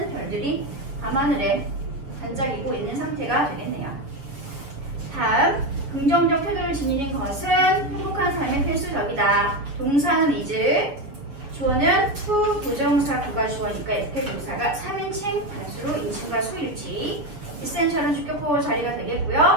별들이 밤하늘에 반짝이고 있는 상태가 되겠네요. 다음, 긍정적 태도를 지니는 것은 행복한 삶의 필수적이다. 동사는 is, 주어는 to, 부정사, 구가 주어니까 이렇게 동사가 3인칭, 단수로 인칭과 수일치. essential은 주격보호 자리가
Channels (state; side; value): late; left; 7.2 ms